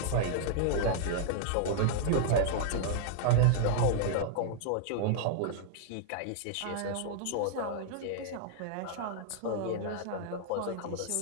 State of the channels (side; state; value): both; different; correlation -0.01